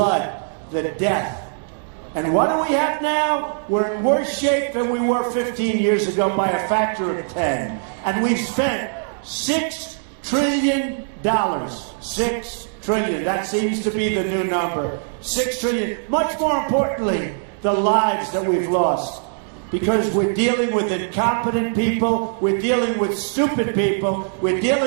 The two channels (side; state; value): left; silent; digital silence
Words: the death. And what do we have now? We're in worse shape than we were 15 years ago by a factor of 10. And we've spent $6 trillion. $6 trillion. That seems to be the new number. $6 trillion. Much more importantly, the lives that we've lost. Because we're dealing with incompetent people, we're dealing with stupid people, we're